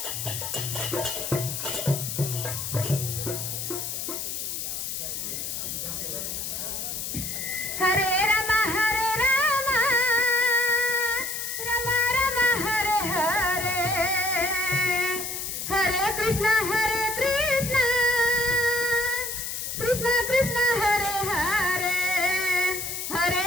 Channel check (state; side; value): noise; left; hiss, 4 dB below the sound